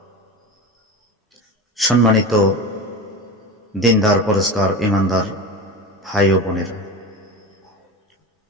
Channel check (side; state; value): both; normal; correlation 0.27